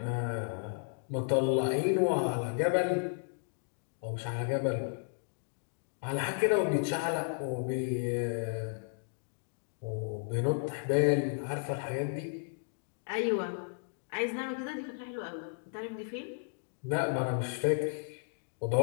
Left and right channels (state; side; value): silent; right; digital silence